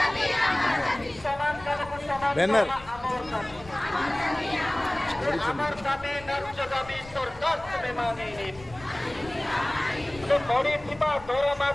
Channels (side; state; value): left; noise; rumble, 19 dB below the sound